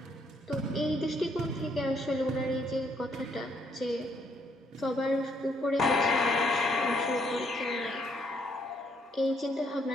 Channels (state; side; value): normal; both; correlation 0.70